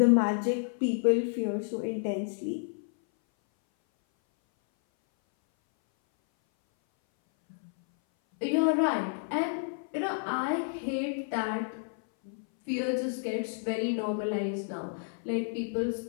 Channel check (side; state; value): right; silent; 58 dB below the other